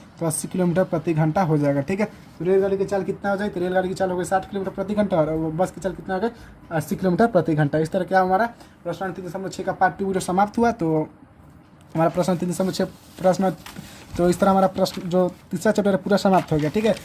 तो 80 किलोमीटर प्रति घंटा हो जाएगा। ठीक है, तो रेलगाड़ी की चाल कितना हो जाए तो रेलगाड़ी की चाल हो गई 60 किलोमीटर प्रति घंटा और बस की चाल कितना हो गई 80 किलोमीटर प्रति घंटा। इस तरह क्या हमारा प्रश्न 3.6 का पार्ट 2 वीडियो समाप्त हुआ। तो हमारा प्रश्न 3.6 प्रश्न, तो इस तरह हमारा प्रश्न जो तीसरा चैप्टर है पूरा समाप्त हो गया। ठीक है,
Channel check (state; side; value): identical; both; correlation 1.00